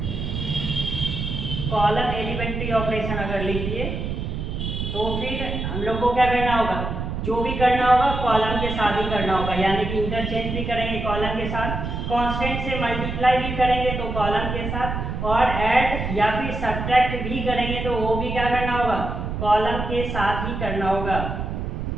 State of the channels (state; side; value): noise; right; rumble, 4 dB below the sound